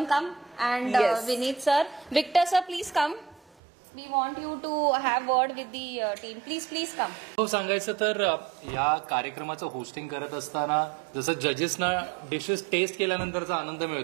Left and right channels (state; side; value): drops out; left; at 3.6 s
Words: come and Yes. Vineet sir. Victor sir please come. We want you to have word with the team. Please come. हो, सांगायचं तर या कार्यक्रमाचं होस्टिंग करत असताना जसं जजेसना डिशेस टेस्ट केल्यानंतरचा आनंद